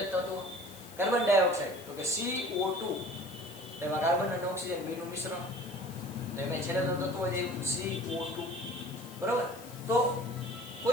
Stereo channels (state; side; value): noise; left; hiss, 18 dB below the sound